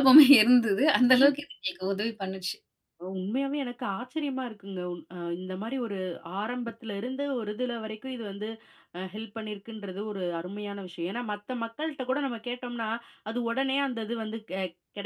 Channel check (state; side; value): identical; both; correlation 1.00